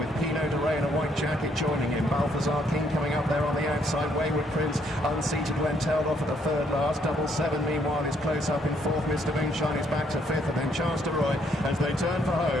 Pineau de Ray in a white jacket joining him. Balthazar King coming up there on the outside. Wayward Prince unseated when tailed off at the third last. 777 meanwhile is close up in fourth. Mr. Moonshine is back to fifth, and then Chance to Roy as they turn for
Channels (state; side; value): normal; both; correlation 0.70